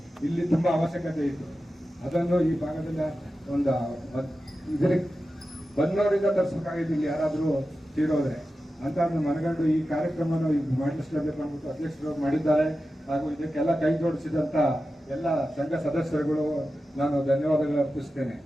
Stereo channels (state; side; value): normal; both; correlation 0.92